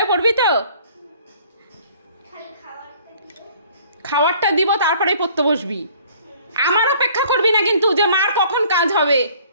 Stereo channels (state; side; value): inverted; both; correlation -0.55